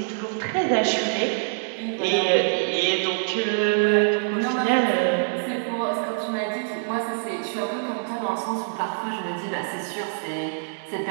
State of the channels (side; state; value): left; silent; digital silence